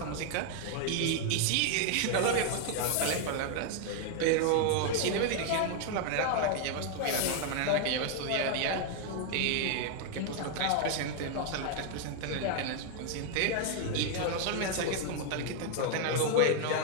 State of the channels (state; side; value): different; both; correlation 0.00